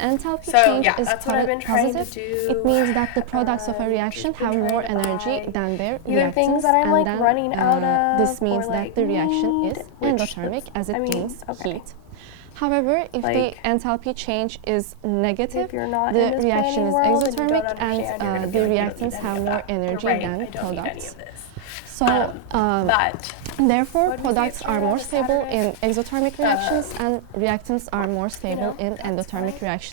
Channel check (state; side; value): different; both; correlation -0.01